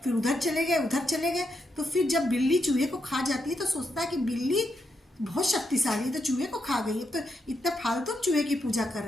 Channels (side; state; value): both; normal; correlation 0.82